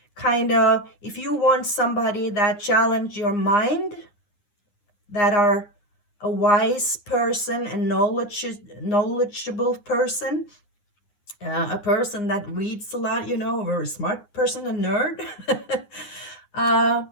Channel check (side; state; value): right; late; 9.7 ms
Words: Kind of, if you want somebody that challenge your mind, that are a wise person and knowledgeable person, a person that reads a lot, a very smart person, a nerd.